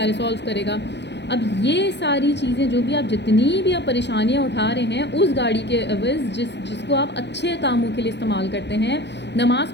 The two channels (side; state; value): right; late; 0.51 ms